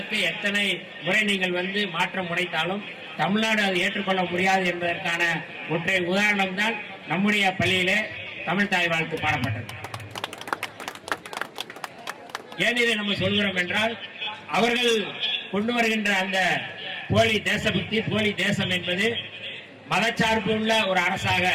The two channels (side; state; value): both; identical; correlation 1.00